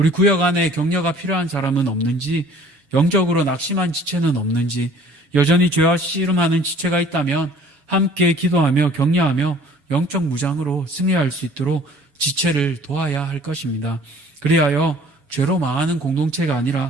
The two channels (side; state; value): left; late; 7.1 ms